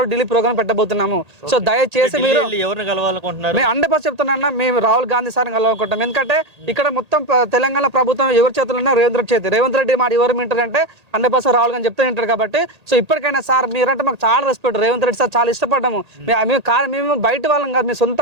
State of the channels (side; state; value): left; late; 1.8 ms